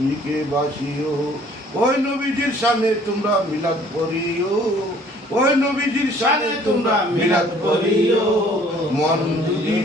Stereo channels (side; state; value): both; normal; correlation 0.56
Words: বাসিও। ওই নবীজির সামনে তোমরা মিলাদ পড়িও, ওই নবীজির সামনে তোমরা মিলাদ পড়িও। মন যদি